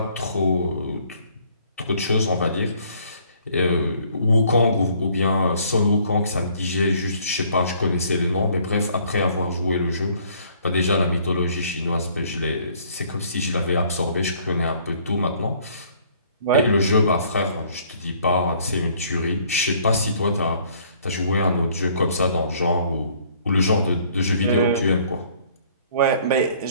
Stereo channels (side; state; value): both; inverted; correlation -0.60